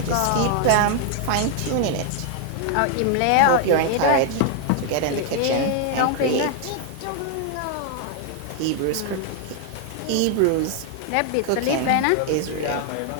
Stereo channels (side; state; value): both; different; correlation 0.00